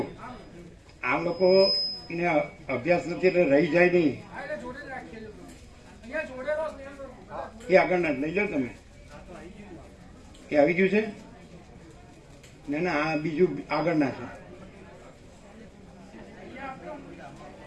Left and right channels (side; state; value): both; identical; correlation 1.00